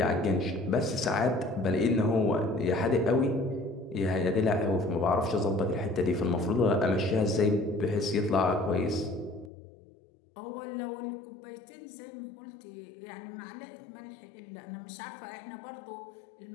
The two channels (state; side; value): drops out; right; at 9.5 s